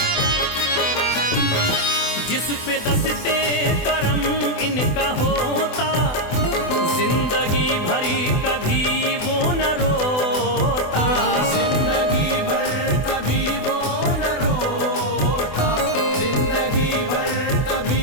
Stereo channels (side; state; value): right; late; 24 ms